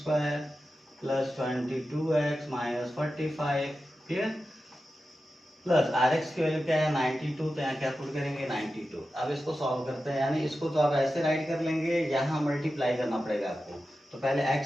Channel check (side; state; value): both; normal; correlation 0.92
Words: plus 22x minus 45। Clear. Plus rx की वैल्यू क्या है 92, तो यहाँ क्या पुट करेंगे 92। अब इसको सॉल्व करते हैं, यानी इसको तो आप ऐसे राइट कर लेंगे, यहाँ मल्टीप्लाई करना पड़ेगा आपको। तो पहले